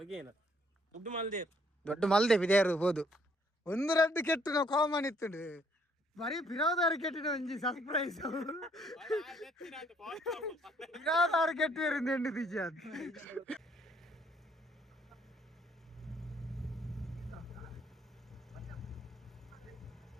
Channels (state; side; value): normal; both; correlation 0.66